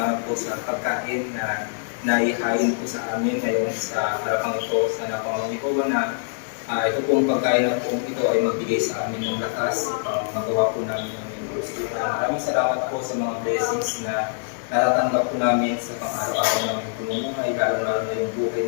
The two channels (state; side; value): silent; right; digital silence